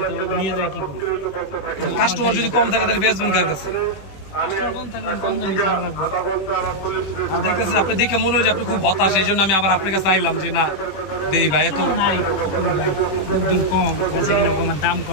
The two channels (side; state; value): right; late; 21 ms